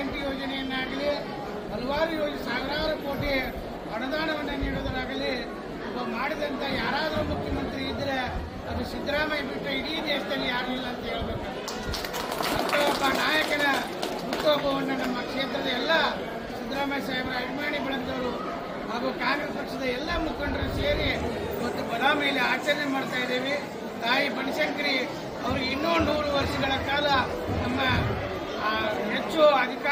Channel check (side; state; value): both; identical; correlation 1.00